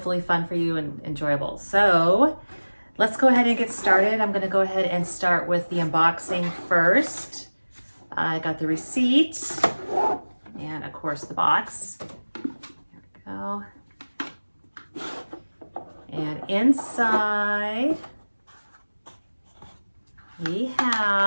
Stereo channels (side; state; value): both; inverted; correlation -1.00